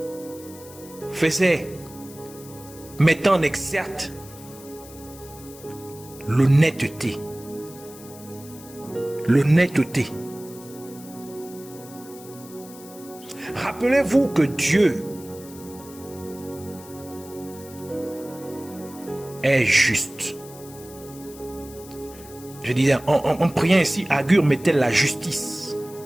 mettant en exergue l'honnêteté. L'honnêteté. Rappelez-vous que Dieu est juste. Je disais, en priant ici, Agur mettait la justice.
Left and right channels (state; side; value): noise; left; hiss, 19 dB below the sound